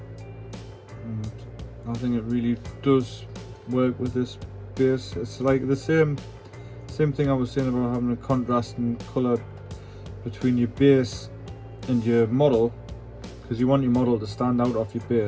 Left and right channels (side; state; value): both; identical; correlation 1.00